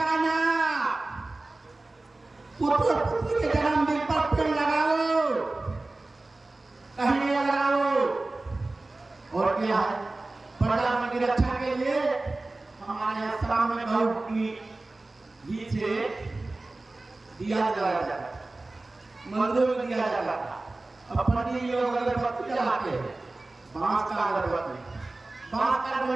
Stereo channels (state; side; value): quieter; left; 3.1 dB